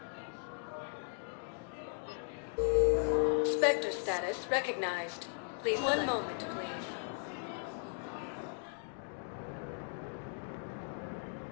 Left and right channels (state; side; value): silent; right; 53 dB below the other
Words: Spectre status recognized. Please one moment, please.